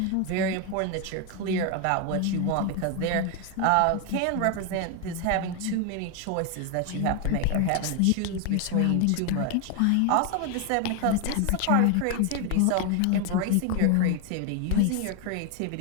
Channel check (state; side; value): different; both; correlation 0.01